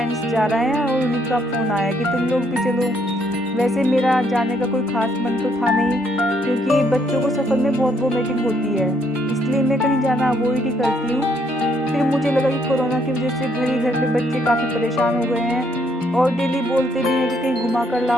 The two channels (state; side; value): normal; both; correlation 0.70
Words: जा रहे हैं और उनका फ़ोन आया कि तुम लोग भी चलो। वैसे मेरा जाने का कोई ख़ास मन तो था नहीं, क्योंकि बच्चों को सफ़र में बहुत वोमिटिंग होती है, इसलिए मैं कहीं जाना अवॉइड ही करती हूँ। फिर मुझे लगा कि कोरोना की वजह से घर में बच्चे काफ़ी परेशान हो गए हैं और डेली बोलते भी हैं कि कहीं घुमा कर